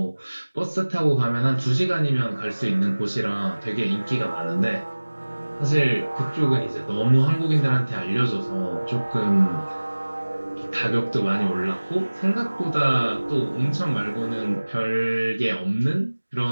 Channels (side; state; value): both; inverted; correlation -1.00